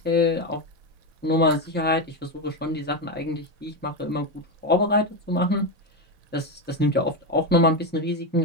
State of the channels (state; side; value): normal; both; correlation 0.12